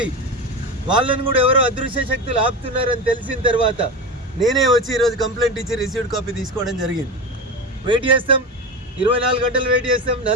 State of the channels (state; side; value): normal; both; correlation 0.23